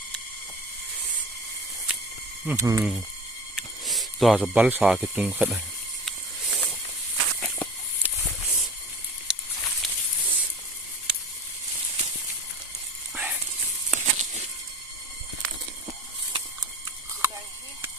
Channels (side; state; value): both; normal; correlation 0.38